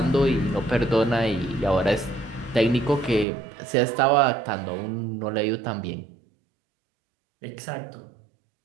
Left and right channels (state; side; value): drops out; left; at 3.2 s